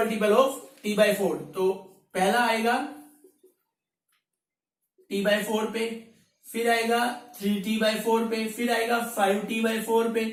of t/4। तो पहला आएगा t/4 पे, फिर आएगा 3t/4 पे, फिर आएगा 5t/4 पे।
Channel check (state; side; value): identical; both; correlation 1.00